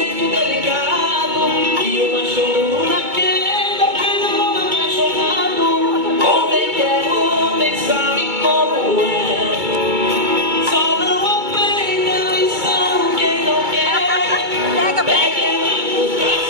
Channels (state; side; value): late; left; 2.2 ms